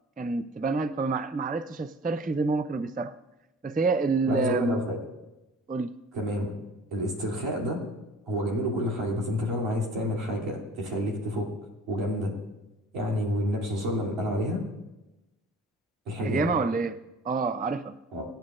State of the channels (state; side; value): normal; both; correlation 0.47